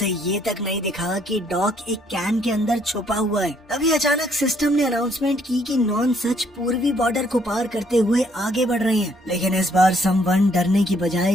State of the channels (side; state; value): both; normal; correlation 0.67